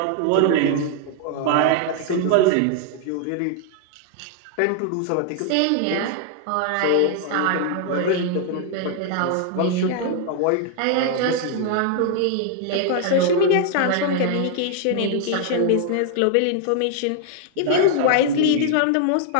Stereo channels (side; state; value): both; different; correlation 0.00